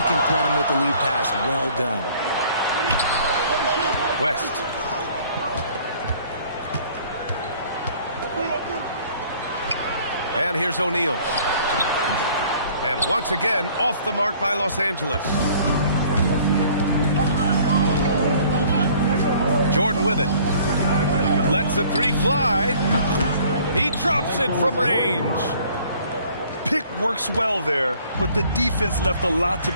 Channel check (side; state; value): both; inverted; correlation -0.55